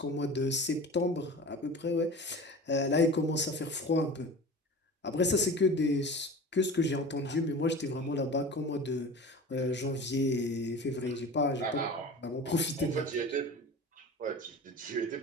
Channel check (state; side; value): normal; both; correlation 0.36